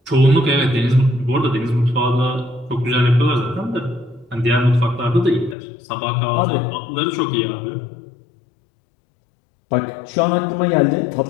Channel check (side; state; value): right; drops out; at 5.6 s